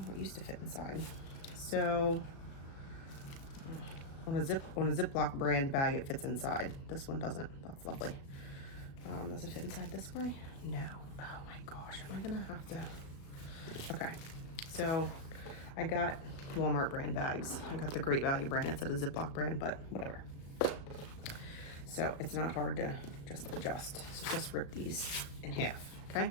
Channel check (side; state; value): right; late; 36 ms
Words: it used to fit inside. So on a Ziploc brand bag, it fits inside. This one doesn't. That's lovely. Does it fit inside this way? No. Oh my gosh, am I gonna have to? Okay, so I got Walmart brand bags. I got the Great Value brand. It's a Ziploc brand, but whatever. So it's not hard to just adjust. So just rip these in half, okay?